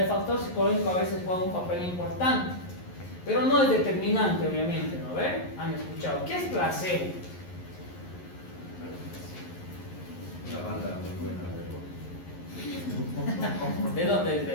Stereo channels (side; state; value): right; late; 11 ms